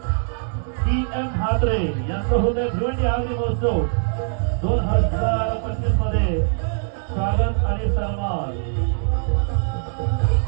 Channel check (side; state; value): left; silent; digital silence